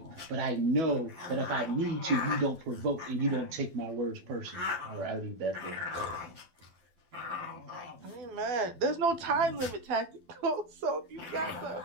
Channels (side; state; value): left; late; 12 ms